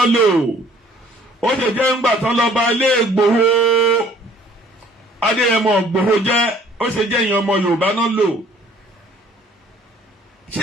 lò. Ó ṣe jẹ́ ńgbà tó lọ bá ilé Ìgbòho Adéyẹmọ Ìgbòho jẹ́. Ó ṣe jẹ́ ìyẹn ọmọ Yorùbá náà lò.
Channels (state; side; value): normal; both; correlation 0.56